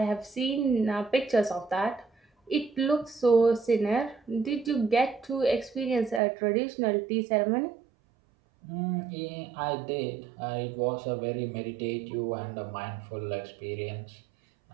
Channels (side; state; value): left; drops out; at 6.2 s